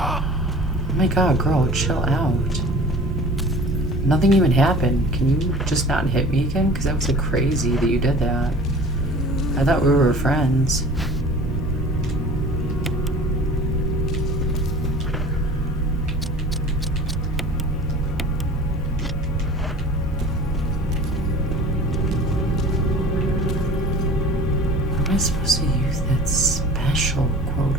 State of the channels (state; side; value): normal; both; correlation 0.43